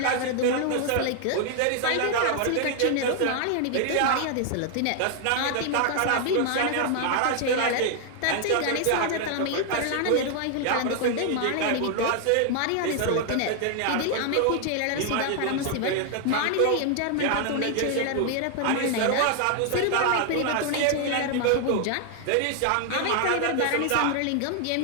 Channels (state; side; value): different; both; correlation 0.00